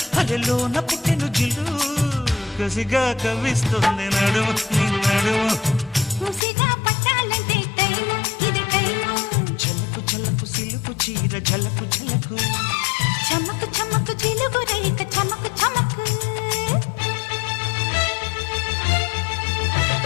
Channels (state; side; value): drops out; right; at 6.5 s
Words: అలెలోన పుట్టెను జిల్లు కసిగా కవిస్తుంది నడుము నీ నడుము ముసిగా పట్టాలంటే టైము ఇది టైము చలకు చలకు సిలుకు చీర ఝలకు ఝలకు చమ్మకు చమ్మకు చిలుగు